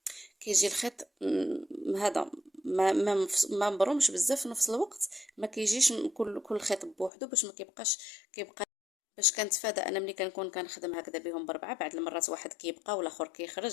الخيط هذا ما مبرومش بزاف في نفس الوقت. ما كيجيش كل خيط بوحدو باش ما كيبقى باش كنتفادى انا ملي كنكون كنخدم هكذا بهم بربعه بعد المرات واحد كيبقى والاخر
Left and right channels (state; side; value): drops out; right; at 7.1 s